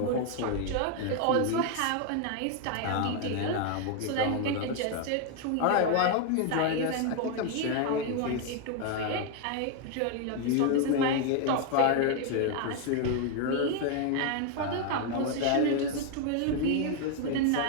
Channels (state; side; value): different; both; correlation 0.00